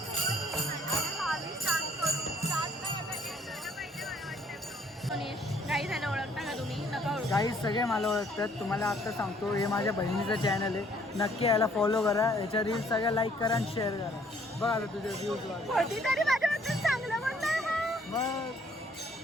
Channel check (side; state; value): both; normal; correlation 0.63